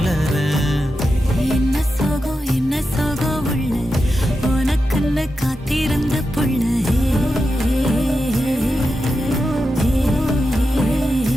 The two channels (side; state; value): both; normal; correlation 0.89